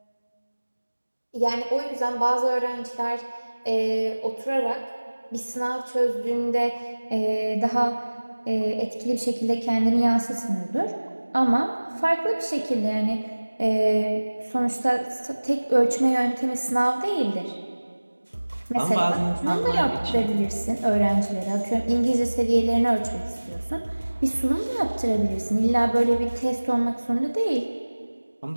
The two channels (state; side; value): inverted; both; correlation -1.00